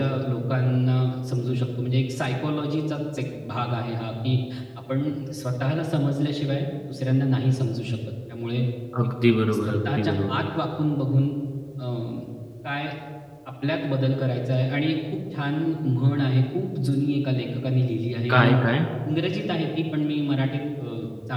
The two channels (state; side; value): identical; both; correlation 1.00